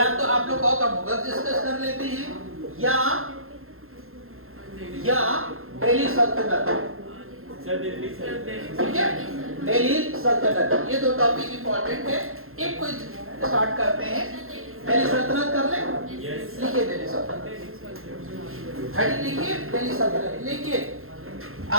तो आप लोग कहो तो मुगल डिस्कस कर लेते हैं, या दिल्ली सल्तनत, ठीक है, दिल्ली सल्तनत। ये 2 टॉपिक इंपॉर्टेंट है। एक कोई स्टार्ट करते हैं, दिल्ली सल्तनत कर ले। लिखिए दिल्ली सल्तनत, हेडिंग लिखिए दिल्ली सल्तनत। लिखिए,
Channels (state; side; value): late; left; 0.61 ms